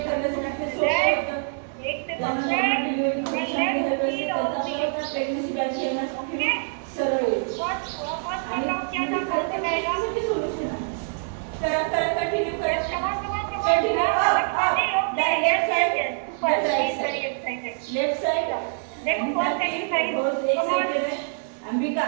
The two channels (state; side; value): silent; left; digital silence